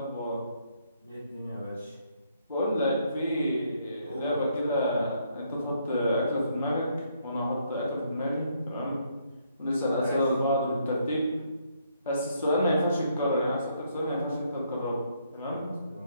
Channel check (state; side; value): inverted; both; correlation -0.71